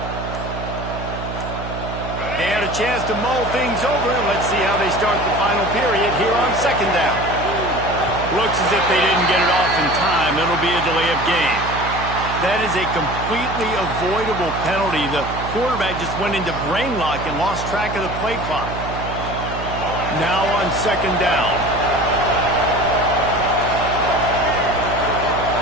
And a chance to mull things over, and let's see how they start the final period here on second down. Looks as if they didn't get it off in time. It'll be a delay of game. That is a completely avoidable penalty. The quarterback just went into brain lock and lost track of the play clock. Now on second down.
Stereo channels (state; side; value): noise; right; hum, 8 dB below the sound